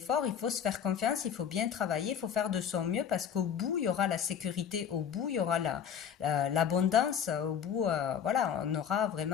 il faut se faire confiance, il faut bien travailler, il faut faire de son mieux parce qu'au bout, il y aura la sécurité, au bout, il y aura l'abondance, au bout, voilà, on aura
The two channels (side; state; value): right; quieter; 8.3 dB